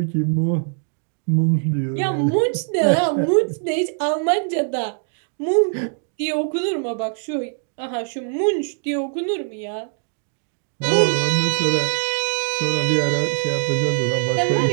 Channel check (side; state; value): left; silent; 57 dB below the other